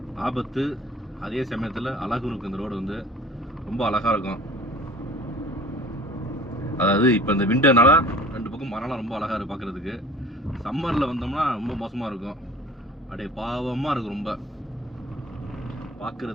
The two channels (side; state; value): both; normal; correlation 0.46